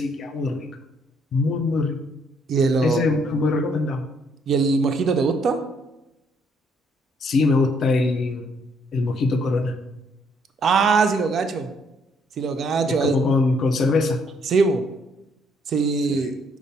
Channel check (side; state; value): both; normal; correlation 0.69